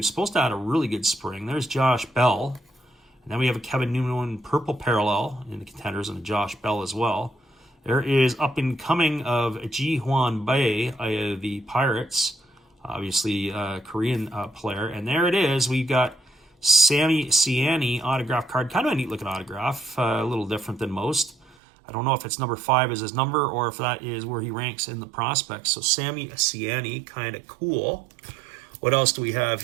supposed to have a really good spring. There's Josh Bell. And then we have a Kevin Newman purple parallel in the contenders and a Josh Bell as well. There is up and coming of Ji Hwan Bae, the Pirates, obviously a Korean player. And there it is. We've got Sammy Siani autograph card. Kind of a neat looking autograph, a little different than most. I don't know if it's number 5 is his number or if that is where he ranks in the prospects. So Sammy Siani, kind of cool. What else do we have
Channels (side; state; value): left; drops out; at 21.6 s